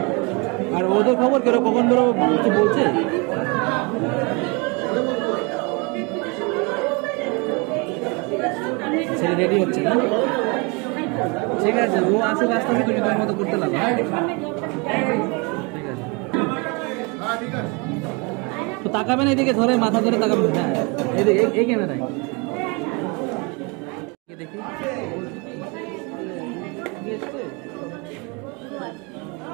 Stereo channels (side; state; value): left; quieter; 30.0 dB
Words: আর ওদের খবর কেন, কখন ধরো কিছু বলছে? ছেলে রেডি হচ্ছে না? ঠিক আছে, ও আসুক, আসতে হবে, তুমি তোমার মতো করতে লাগো। ঠিক আছে, তো তাকাবেন এদিকে, ধরে মাথা ধরে তাকাবেন। হ্যাঁ এদিকে, এই ক্যামেরায় দেখি।